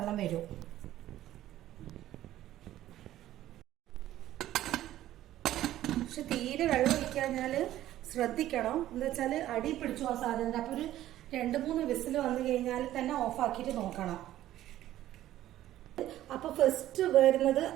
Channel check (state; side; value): quieter; left; 13.6 dB